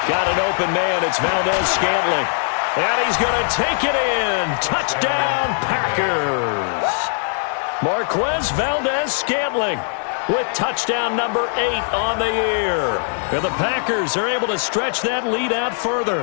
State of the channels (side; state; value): right; silent; 57 dB below the other